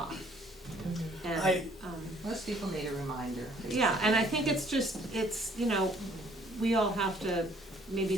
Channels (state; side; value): normal; both; correlation 0.60